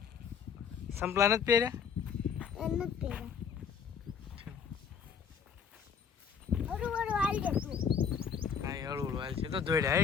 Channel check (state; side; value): quieter; right; 7.0 dB